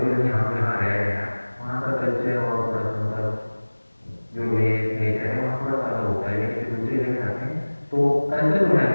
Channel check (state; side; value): inverted; both; correlation -1.00